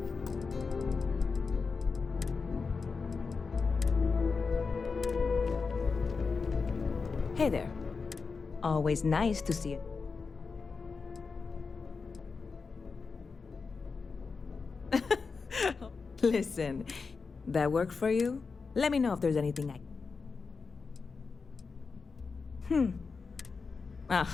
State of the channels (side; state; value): right; quieter; 4.8 dB